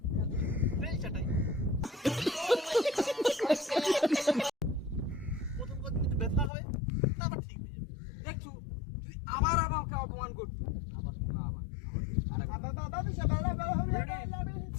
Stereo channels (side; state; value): right; drops out; at 6.5 s